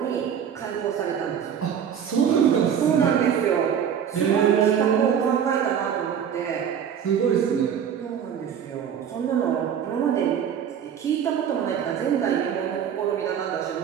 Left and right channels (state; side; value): quieter; left; 8.4 dB